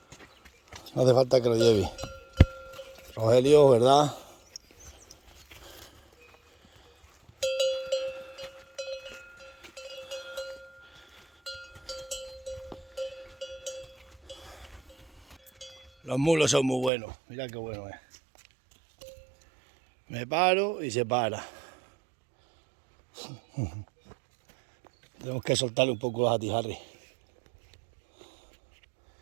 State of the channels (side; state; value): left; drops out; at 16.9 s